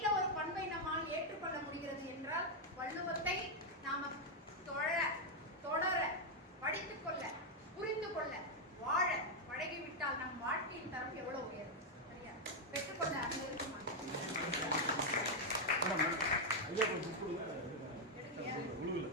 ஒரு பண்பை நம்மால் ஏற்றுக்கொள்ள முடிகிறது என்றால் வள்ளுவத்தை நாம தொடர படித்துக் கொள்ள, புரிந்து கொள்ள, வாழ பழகிவிட்டால் நம் வாழ்க்கையின் தரம் எவ்வளவு உயரும். சரியா? பெற்றுக்கொள்ள அங்க இருக்குமா?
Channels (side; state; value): both; normal; correlation 0.00